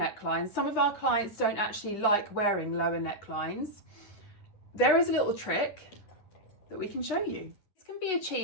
Some of our clients don't actually like wearing lower necklines. There is a little trick that we can show you. This can be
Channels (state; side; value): late; right; 9.9 ms